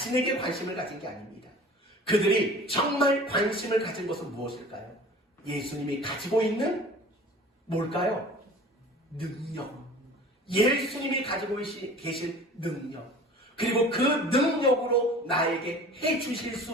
관심을 가진 게 아닙니다. 그들이 정말 관심을 가진 것은 무엇일까요? 예수님이 가지고 있는 뭘까요? 능력. 예수님이 가지고 계신 능력. 그리고 그 능력으로 나에게 해주실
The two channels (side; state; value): both; normal; correlation 0.43